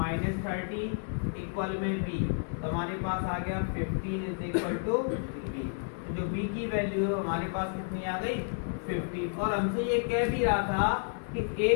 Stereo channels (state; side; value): silent; right; digital silence